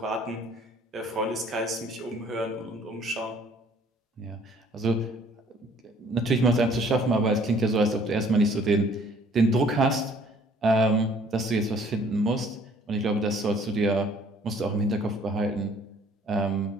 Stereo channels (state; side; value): normal; both; correlation 0.58